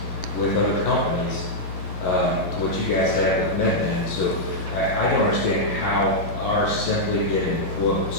with other companies to what you guys had with MedBen. So I don't understand how our simply getting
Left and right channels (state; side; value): late; right; 11 ms